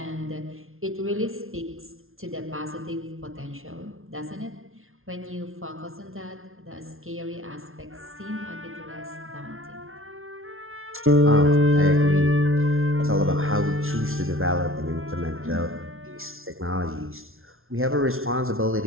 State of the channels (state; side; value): late; left; 0.61 ms